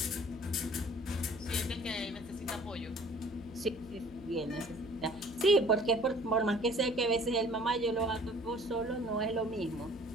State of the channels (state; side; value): noise; left; hum, 17 dB below the sound